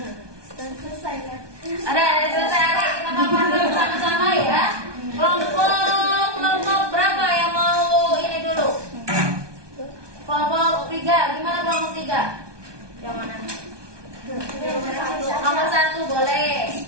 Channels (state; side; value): late; left; 1.2 ms